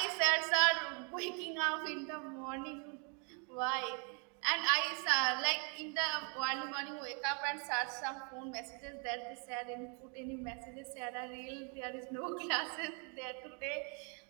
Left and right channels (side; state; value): left; quieter; 38.2 dB